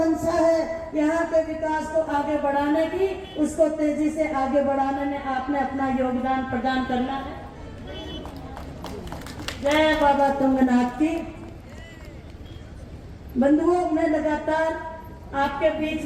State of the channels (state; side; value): identical; both; correlation 1.00